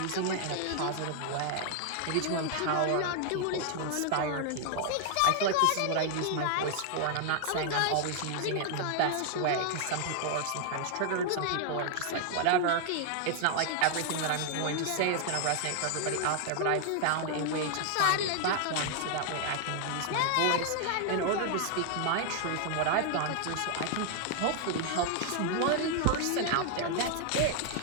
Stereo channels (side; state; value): both; different; correlation 0.00